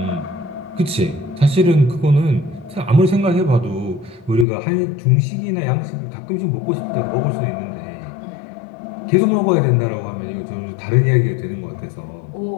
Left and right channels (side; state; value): right; drops out; at 4.5 s